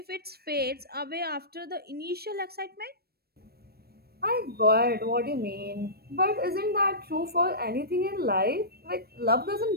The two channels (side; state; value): left; late; 0.46 ms